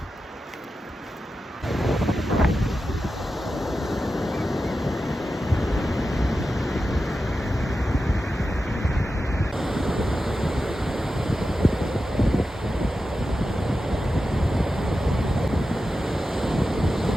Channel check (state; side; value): normal; both; correlation 0.91